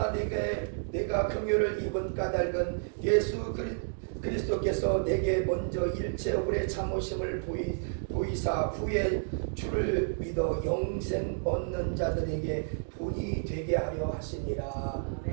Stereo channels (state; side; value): silent; left; digital silence